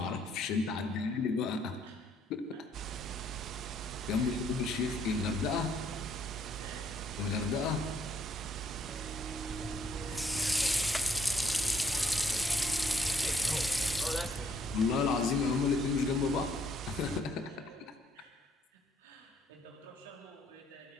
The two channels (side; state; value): both; normal; correlation 0.68